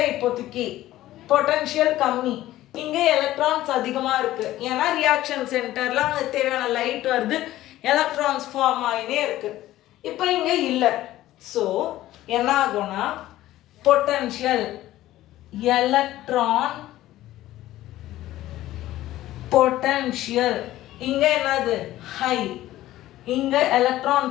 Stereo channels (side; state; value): right; quieter; 15.0 dB